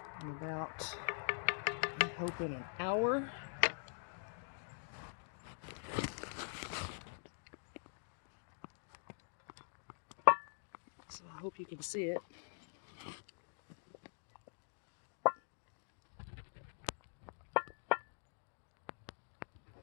in about, I'm hoping, an hour. So I hope you can see it.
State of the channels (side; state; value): right; silent; digital silence